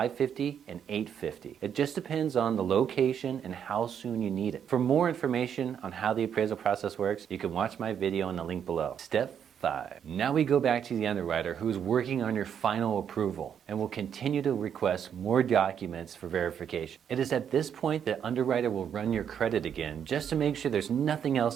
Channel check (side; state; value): left; quieter; 8.3 dB